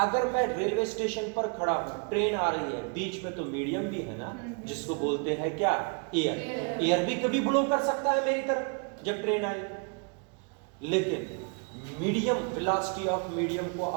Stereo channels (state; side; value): quieter; left; 37.6 dB